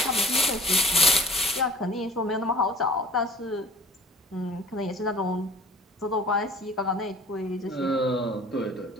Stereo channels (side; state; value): both; normal; correlation 0.47